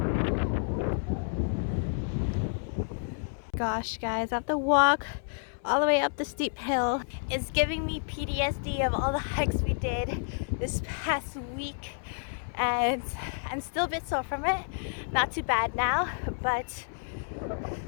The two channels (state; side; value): silent; right; 58 dB below the other